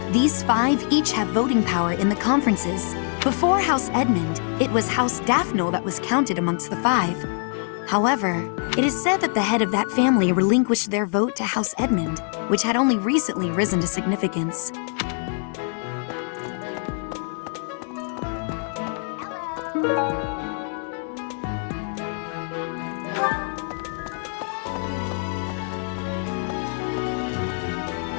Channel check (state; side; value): silent; right; 59 dB below the other